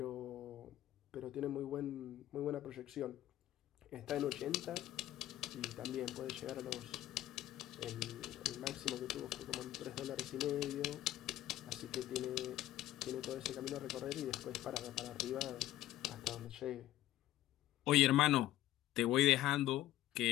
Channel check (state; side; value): quieter; right; 14.2 dB